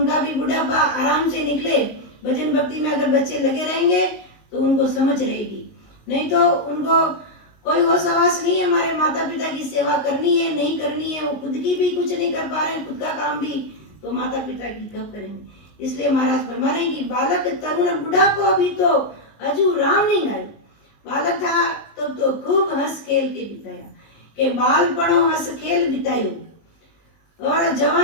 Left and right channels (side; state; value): right; late; 19 ms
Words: भी बुढ़ापा आराम से निकले। भजन भक्ति में अगर बच्चे लगे रहेंगे तो उनको समझ रहेगी, नहीं तो उनको कोई होश आवास नहीं है हमारे माता पिता की सेवा करनी है नहीं करनी है, वो खुद की भी कुछ नहीं कर पा रहे हैं, खुद का काम भी तो माता पिता की कब करेंगे। इसलिए महाराज फरमा रहे हैं कि बालक तरुण बुढ़ापो भी तो अजू राम नहीं गायो। बालक था तब तो खूब हंस खेल के बिताया, के बालपणो हंस खेल बितायो, और